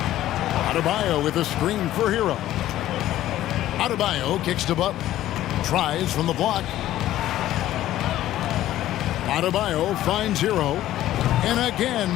Adebayo with a screen for Hero. Adebayo kicks to Butler. Tries from the block. Adebayo finds Hero. And again,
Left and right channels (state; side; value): quieter; right; 13.7 dB